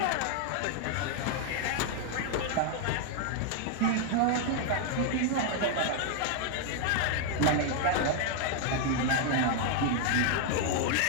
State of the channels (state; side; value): different; both; correlation 0.00